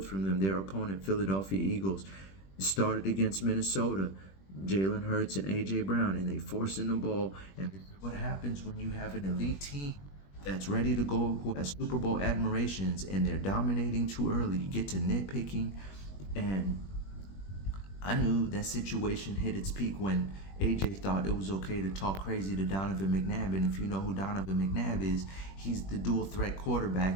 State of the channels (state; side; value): late; right; 21 ms